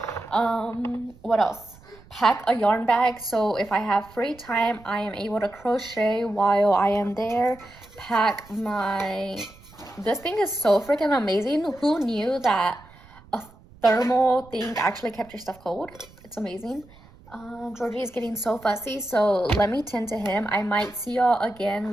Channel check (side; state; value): right; noise; rumble, 24 dB below the sound